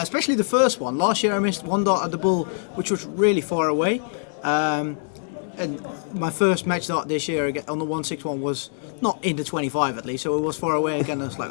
especially the first one. Last year I missed one dart at the bull, which was really far away. And my first match dart this year on the 161 was not in the 25 at least, so it was far away again. I was like,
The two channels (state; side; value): silent; right; digital silence